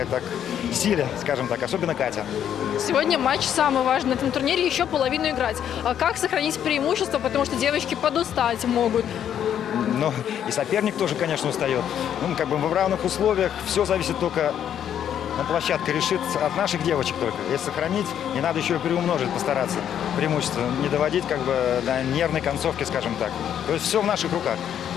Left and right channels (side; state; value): right; quieter; 9.6 dB